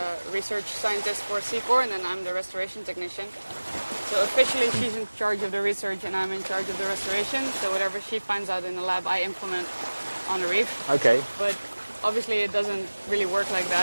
research scientist for Seacor, and then I'm the restoration technician. So officially she's in charge of the research and I'm in charge of the restoration. So whatever she finds out in the lab, I implement on the reef. Okay. But obviously it doesn't really work like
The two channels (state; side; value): inverted; both; correlation -1.00